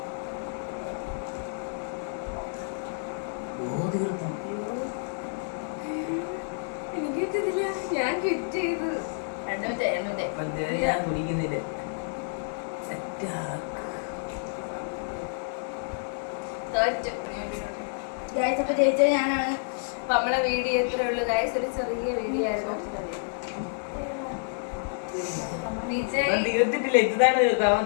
എനിക്ക് പറ്റത്തില്ല. ഞാൻ ക്വിറ്റ് ചെയ്തു. ഞാൻ കുടിക്കുന്നില്ല. അപ്പൊ ജയിച്ചത് ഞാനാണ്. അപ്പൊ നമ്മളെ വീഡിയോ എത്ര ഉള്ളു ഗൈസ്? ഒരു ചെറിയ വീഡിയോ ആയിരുന്നു. തീർത്തിട്ടില്ല. ഇതാണ്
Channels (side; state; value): right; silent; digital silence